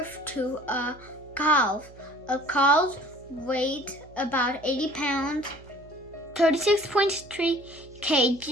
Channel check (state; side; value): noise; right; hum, 22 dB below the sound